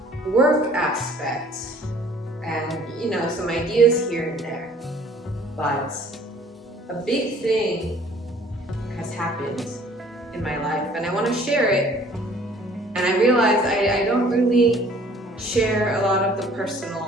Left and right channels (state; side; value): normal; both; correlation 0.54